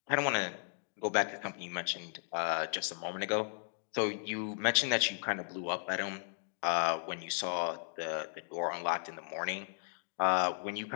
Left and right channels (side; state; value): right; silent; digital silence